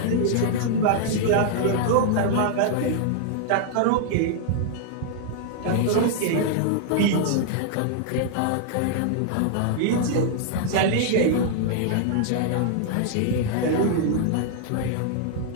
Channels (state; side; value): different; both; correlation -0.01